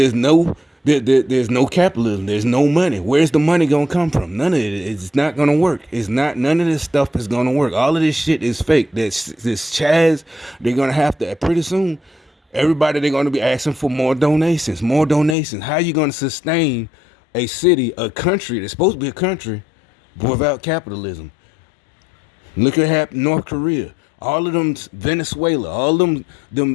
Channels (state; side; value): drops out; right; at 15.4 s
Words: no capitalism. There's no money. Where's the money gonna come from? None of it. It's not gonna work. It's not. None of this stuff is gonna work. All of this shit is fake. This Chaz. They're gonna have to pretty soon. Everybody, they're gonna be asking for more donations. More donations. How you gonna sustain a city, a country that's supposed to be a country, without capitalism? Look at North Korea. All of them, Venezuela, all them